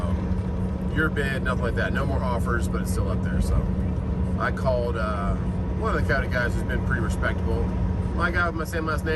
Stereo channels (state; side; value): identical; both; correlation 1.00